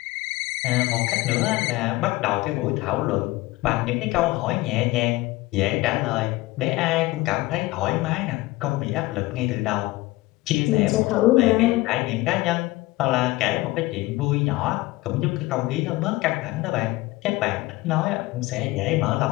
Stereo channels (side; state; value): right; quieter; 19.6 dB